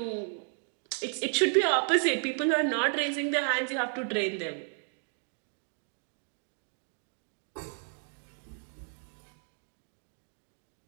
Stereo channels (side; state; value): left; silent; 56 dB below the other